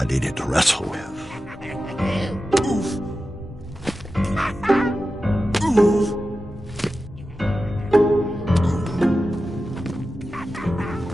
needed to wrestle with.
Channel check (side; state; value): both; normal; correlation 0.93